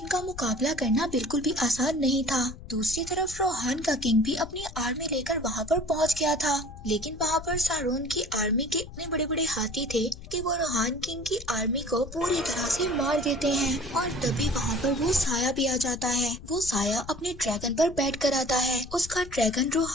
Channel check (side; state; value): left; noise; rumble, 14 dB below the sound